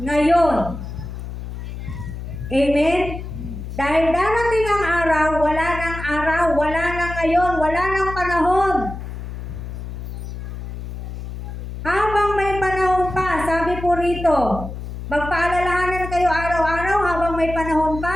Amen? Dahil darating ang araw, wala nang ngayon, wala nang panahon. Habang may panahon pa, sabi po rito, magpaalalahanan kayo araw-araw habang may panahon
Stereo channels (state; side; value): noise; left; hum, 8 dB below the sound